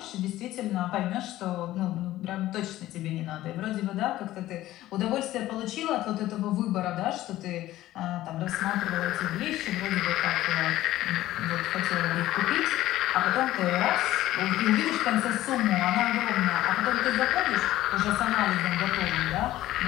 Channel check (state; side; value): quieter; right; 15.1 dB